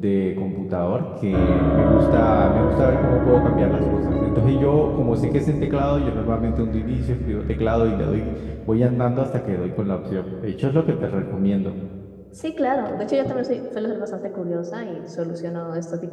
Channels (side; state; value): both; identical; correlation 1.00